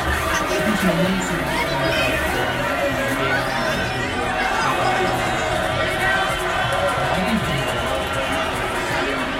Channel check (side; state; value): both; identical; correlation 1.00